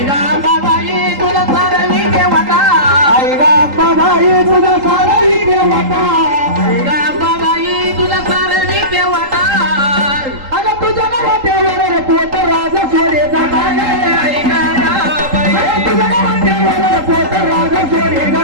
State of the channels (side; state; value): left; late; 3.8 ms